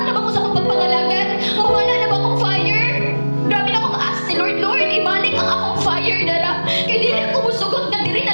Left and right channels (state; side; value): inverted; both; correlation -1.00